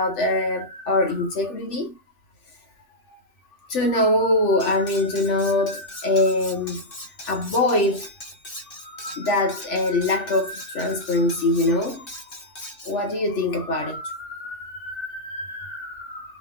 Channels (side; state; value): right; late; 3.1 ms